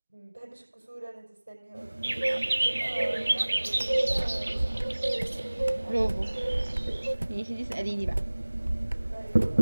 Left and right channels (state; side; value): inverted; both; correlation -1.00